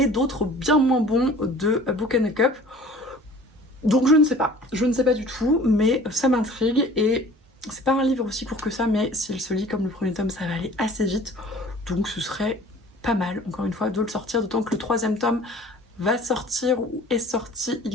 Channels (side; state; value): both; normal; correlation 0.47